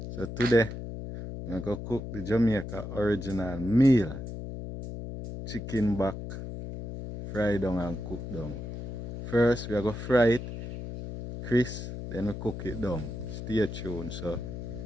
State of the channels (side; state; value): left; noise; hum, 8 dB below the sound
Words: So today we're gonna cook the Jamaica original meal, chicken back, fry down and cook down. First we're gonna fry it, crisp, then we cook it down. Stay tuned. So